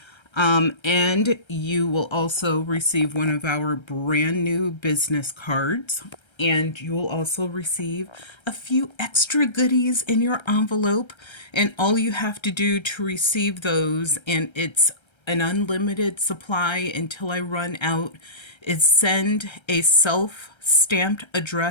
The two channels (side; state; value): right; late; 1.3 ms